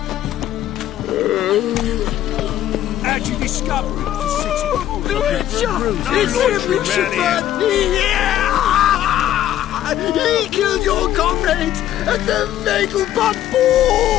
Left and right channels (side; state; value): right; quieter; 12.2 dB